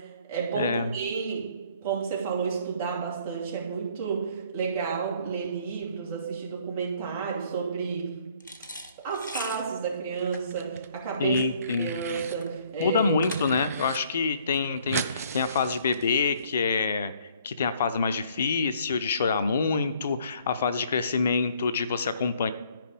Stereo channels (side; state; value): both; inverted; correlation -0.61